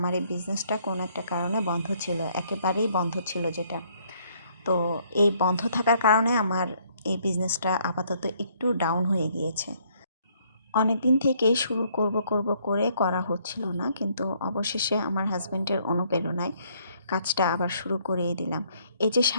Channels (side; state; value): both; inverted; correlation -0.67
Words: এই বিজনেসটা কোনো একটা কারণে বন্ধ ছিল, একেবারেই বন্ধ ছিল যেটা। তো এই বন্ধ থাকার কারণে আমার এই বিজনেসটা আপাতত একটু ডাউন হয়ে গিয়েছে। অনেক দিন থেকেই শুরু করব করে করা হচ্ছিল না, কিন্তু অবশেষে আমার হাজব্যান্ডের অনুপ্রেরণায় কাজটা আবার শুরু করিয়ে দিলাম। এই যে